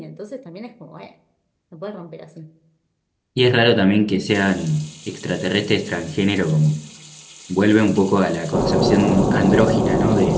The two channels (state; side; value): identical; both; correlation 1.00